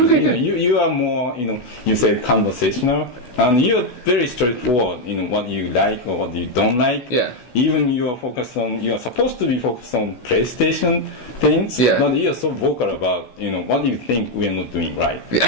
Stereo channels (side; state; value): right; late; 16 ms